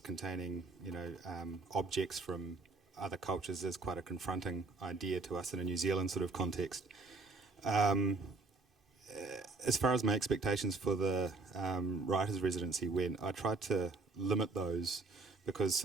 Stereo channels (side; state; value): left; quieter; 3.7 dB